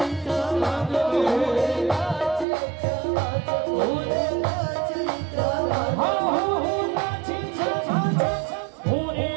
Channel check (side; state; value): left; drops out; at 2.5 s